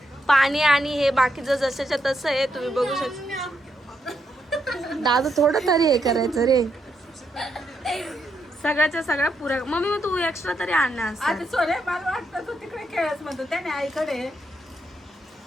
पाणी आणि हे बाकीचं जसंच्या तसं आहे, तुम्ही बघू शकता. दादा थोडं तरी हे करायचं रे. सगळ्याच्या सगळ्या पुऱ्या. मम्मी मग तू एक्स्ट्रा तरी आणणार असं.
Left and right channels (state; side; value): normal; both; correlation 0.80